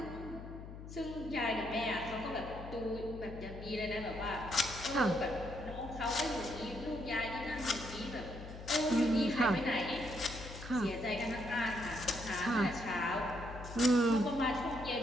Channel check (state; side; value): noise; left; hum, 12 dB below the sound